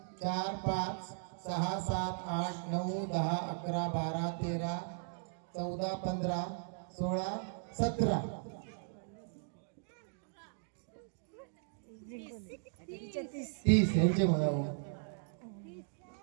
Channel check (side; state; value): left; silent; digital silence